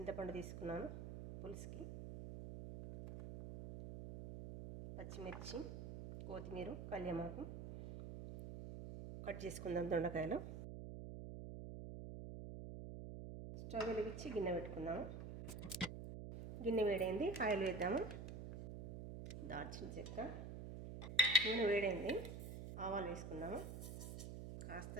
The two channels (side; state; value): right; noise; hum, 8 dB below the sound